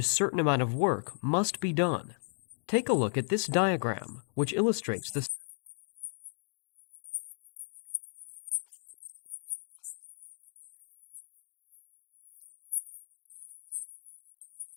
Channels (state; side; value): silent; right; digital silence